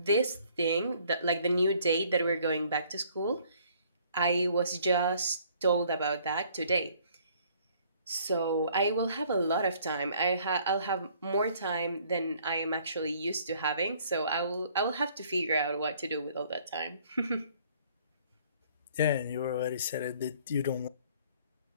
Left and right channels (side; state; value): both; inverted; correlation -0.60